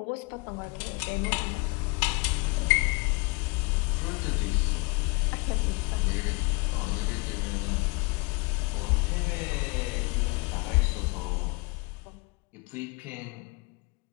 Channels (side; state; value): right; quieter; 26.4 dB